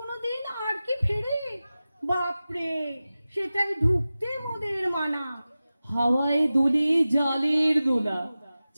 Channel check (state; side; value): inverted; both; correlation -0.95